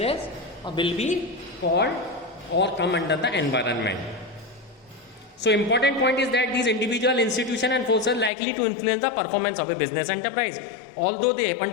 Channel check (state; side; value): drops out; right; at 8.3 s